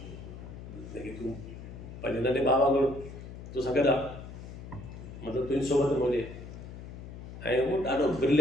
जेके तूं पंहिंजे नंढे भाउ वांगुरु तोसां गॾु आहे, मतिलबु तुंहिंजी सोबत में हुजे। ऐं उहो ॾाढो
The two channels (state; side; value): noise; left; hum, 12 dB below the sound